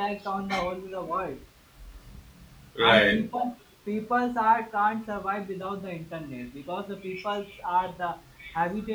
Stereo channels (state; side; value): identical; both; correlation 1.00